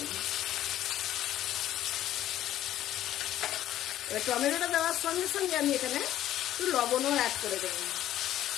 এবার টমেটোটা দেওয়ার সঙ্গে সঙ্গে আমি এখানে একটু লবণও অ্যাড করে দেব।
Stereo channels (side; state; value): right; quieter; 12.8 dB